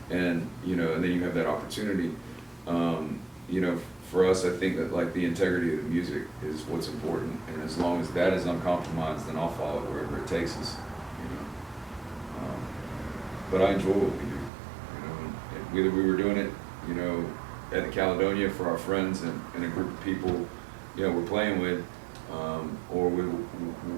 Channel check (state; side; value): drops out; left; at 14.5 s